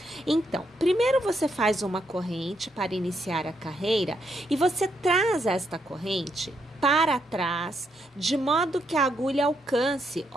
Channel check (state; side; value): normal; both; correlation 0.78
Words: Então, primeiro você faz uma corrente para iniciar a carreira e você traz esta corrente para trás, de modo que a agulha alcance,